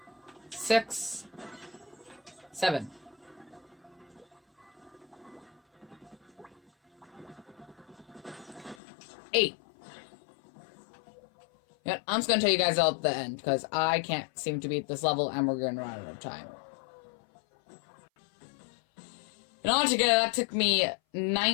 6, 7. 8. Yeah, I'm just gonna tell you guys all at the end because I can't seem to beat this level and we're gonna run out of time. And altogether, that took me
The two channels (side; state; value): right; drops out; at 8.8 s